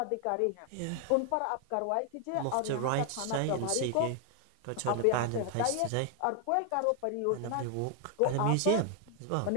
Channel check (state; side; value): different; both; correlation 0.00